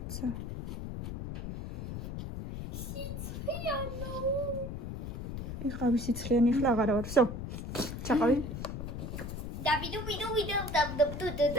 ცა. იყავი სიცხიანი ახლა აღარა ვარ. всё. ჩაყავი.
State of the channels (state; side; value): noise; left; rumble, 6 dB below the sound